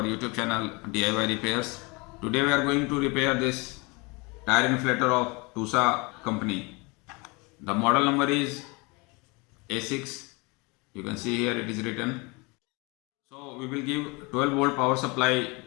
YouTube channel DIY Repairs. Today we are going to repair this tire inflator of TUSA company. The model number is A6. You can see here it is written. So we will give 12 volt power supply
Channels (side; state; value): right; quieter; 27.6 dB